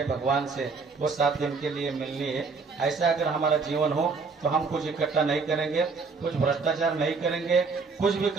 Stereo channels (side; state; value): left; quieter; 4.6 dB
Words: भगवान से वो 7 दिन के लिए मिलनी है। ऐसा अगर हमारा जीवन हो तो हम कुछ इकट्ठा नहीं करेंगे, कुछ भ्रष्टाचार नहीं करेंगे, कुछ भी